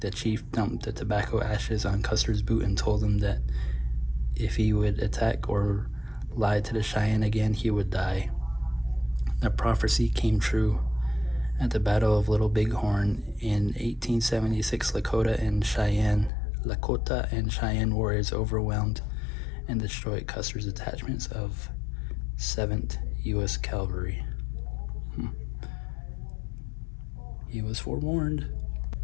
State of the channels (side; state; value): right; drops out; at 16.3 s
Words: chief dumped the tobacco ashes on Custer's boot and told him that if he would attack or lie to the Cheyenne again, he would die. The prophecy came true. At the Battle of Little Bighorn in 1876, Lakota and Cheyenne warriors overwhelmed and destroyed Custer's detachments of 7th U.S. Cavalry. He was forewarned.